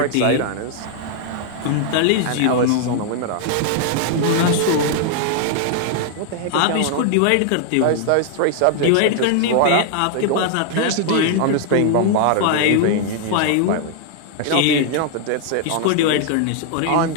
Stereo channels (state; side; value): different; both; correlation 0.00